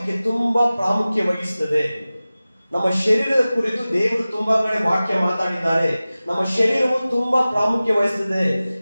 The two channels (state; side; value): inverted; both; correlation -0.97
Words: ತುಂಬಾ ಪ್ರಾಮುಖ್ಯ ವಹಿಸುತ್ತದೆ. ನಮ್ಮ ಶರೀರದ ಕುರಿತು ದೇವರು ತುಂಬಾ ಕಡೆ ವಾಕ್ಯ ಮಾತಾಡಿದ್ದಾರೆ. ನಮ್ಮ ಶರೀರವು ತುಂಬಾ ಪ್ರಾಮುಖ್ಯ ವಹಿಸುತ್ತದೆ.